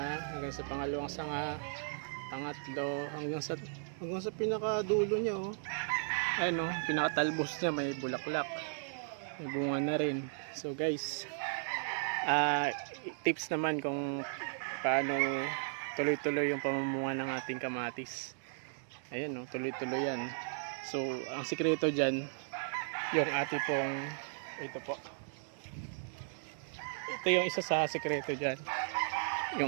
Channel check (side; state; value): left; silent; digital silence